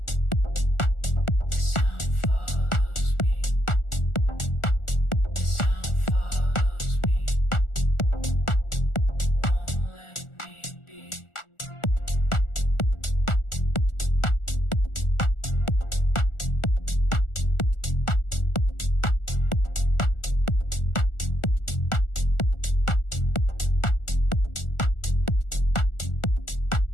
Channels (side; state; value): right; late; 1.4 ms